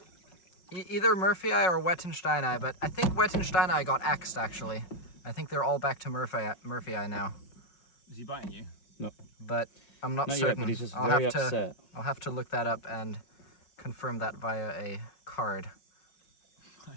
Either Murphyi or Wettensteini, but I think Wettensteini got axed actually. I think they're all back to Murphyi now. Is he biting you? No. But I'm not Not yet, certain. but he's just very upset. I'll have to look that up and confirm that via a card.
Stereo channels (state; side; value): late; right; 5.4 ms